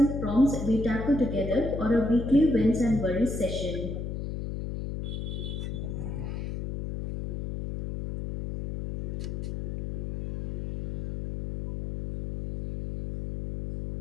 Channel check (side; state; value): left; noise; hum, 5 dB below the sound